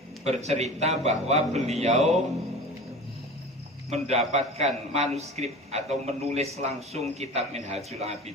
bercerita bahwa beliau mendapatkan manuskrip atau menulis langsung kitab Minhajul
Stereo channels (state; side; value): normal; both; correlation 0.36